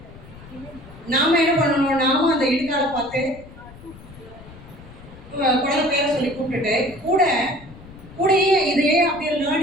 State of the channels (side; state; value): left; noise; rumble, 19 dB below the sound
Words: நாம என்ன பண்ணணும், நாமும் அந்த இடுக்கால பார்த்து குழந்தை பேரை சொல்லி கூப்பிட்டுட்டு கூடையே இதையே அப்படியே